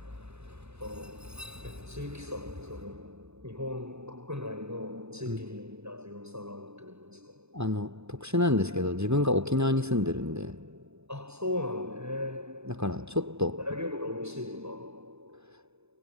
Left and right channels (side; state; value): left; late; 0.80 ms